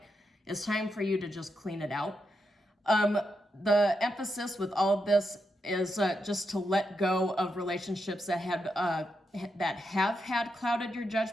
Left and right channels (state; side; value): normal; both; correlation 0.84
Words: it's time for you to just clean it out. The emphasis with all of this is just to let go of relationships that have had clouded your